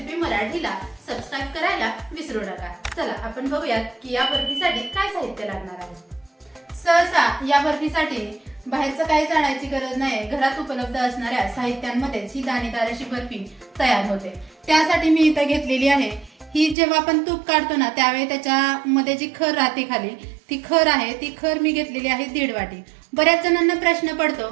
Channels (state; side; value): drops out; left; at 16.8 s